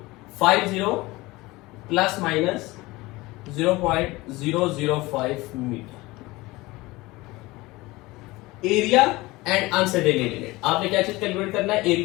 plus minus 0.005 metre. Area and uncertainty, आपने क्या चीज कैलकुलेट करना है,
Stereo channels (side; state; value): right; quieter; 20.9 dB